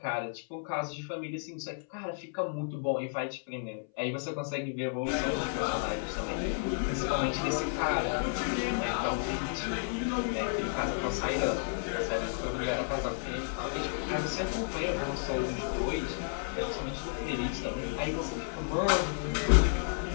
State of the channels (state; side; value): silent; right; 56 dB below the other